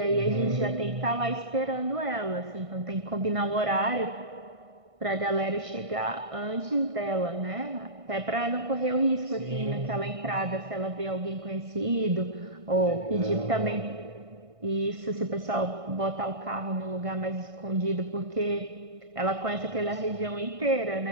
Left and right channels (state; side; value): late; left; 1.5 ms